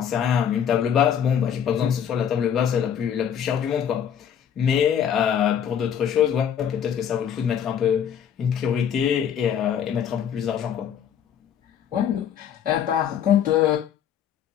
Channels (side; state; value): right; quieter; 8.7 dB